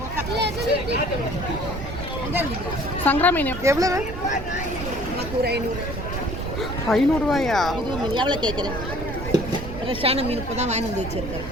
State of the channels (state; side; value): noise; right; rumble, 8 dB below the sound